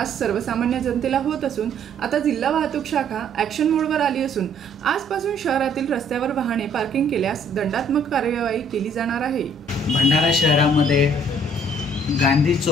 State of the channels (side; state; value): both; normal; correlation 0.61